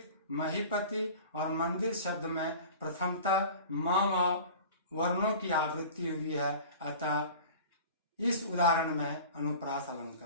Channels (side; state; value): both; inverted; correlation -0.40